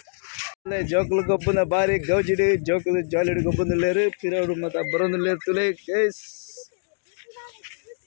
ಜೋಕುಲು ಗೊಬ್ಬನ ಬಾರಿ ಗೌಜಿಡು ಜೋಕುಲು ಜಾಲಿಡು ಗೊಬ್ಬಂದುಲ್ಲೇರು ಪಿರೋಡು ಮತ್ತು ಬರೋಂದುಲ್ಲೇರು ತುಳೆ ಗೈಸ್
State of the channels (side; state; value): right; silent; digital silence